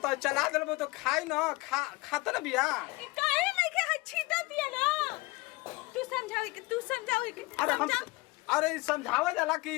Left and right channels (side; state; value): right; quieter; 22.7 dB